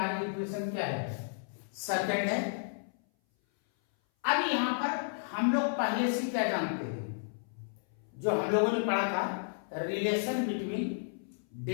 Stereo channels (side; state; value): right; silent; 56 dB below the other